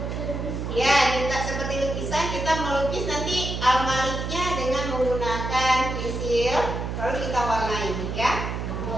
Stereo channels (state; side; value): noise; right; hum, 4 dB below the sound